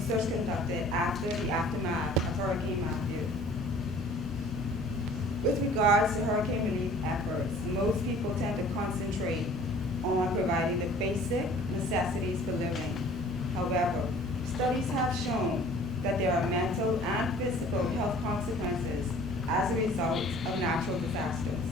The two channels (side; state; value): both; normal; correlation 0.50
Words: conducted after the aftermath of Hurricane Matthew. With regards to hurricane relief efforts, most people tend to concentrate on providing the basic necessities for living. However, studies have shown that there are mental and physical health consequences as a result of natural disasters.